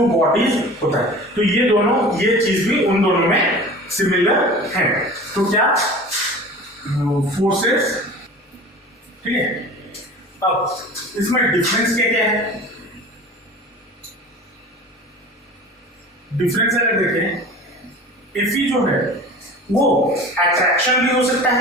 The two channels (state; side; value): normal; both; correlation 0.39